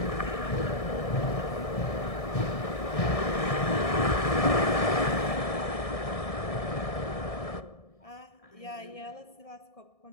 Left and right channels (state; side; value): late; right; 1.6 ms